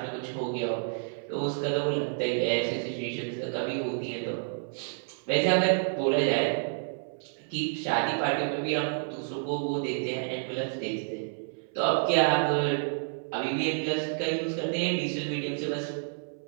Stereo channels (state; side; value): silent; left; 58 dB below the other